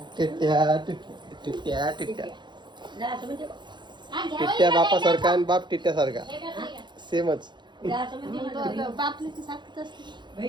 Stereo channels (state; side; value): late; left; 0.22 ms